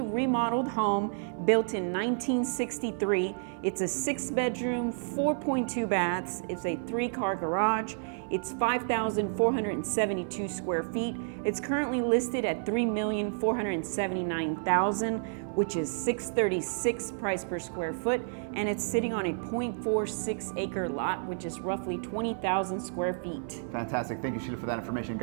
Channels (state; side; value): silent; left; 58 dB below the other